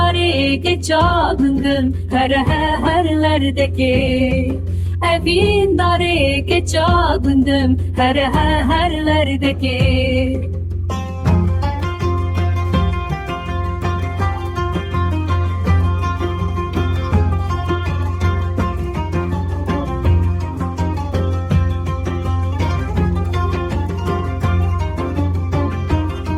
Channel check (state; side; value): identical; both; correlation 1.00